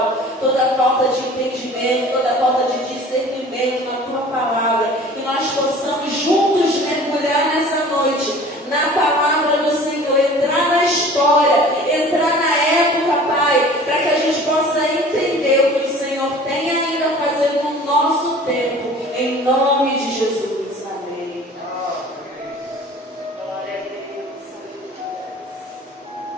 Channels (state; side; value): normal; both; correlation 0.45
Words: toda a falta de entendimento, toda a falta de discernimento na tua palavra. Que nós possamos juntos mergulhar nessa noite na palavra do Senhor, entrar na história, entrar na época, Pai, para que a gente possa entender o que o Senhor tem ainda a fazer no nosso tempo, em nome de Jesus. Amém. Glória a Deus.